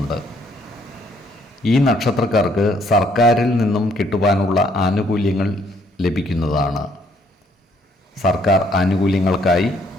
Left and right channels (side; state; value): both; normal; correlation 0.66